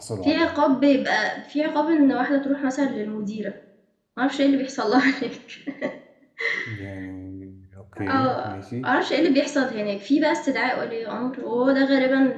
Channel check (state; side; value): identical; both; correlation 1.00